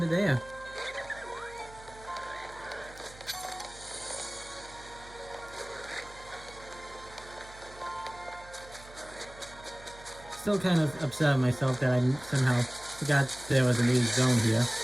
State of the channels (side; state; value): right; noise; hum, 19 dB below the sound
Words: there. still kind of upset at myself that I somehow forgot there was a new zone here,